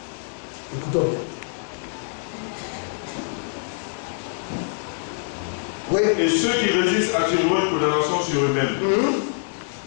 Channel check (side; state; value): right; silent; digital silence